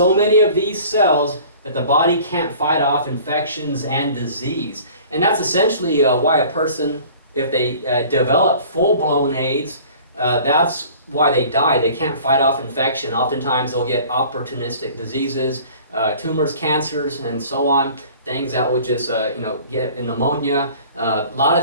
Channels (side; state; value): both; inverted; correlation -0.47